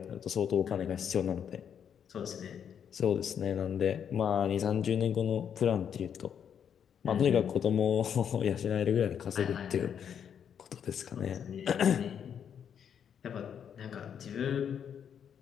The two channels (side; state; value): right; quieter; 8.2 dB